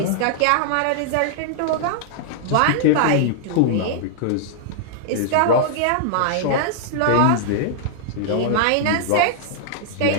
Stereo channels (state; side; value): different; both; correlation -0.01